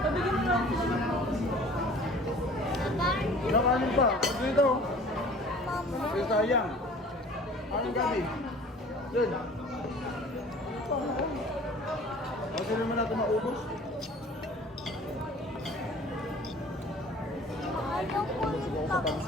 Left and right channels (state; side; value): normal; both; correlation 0.47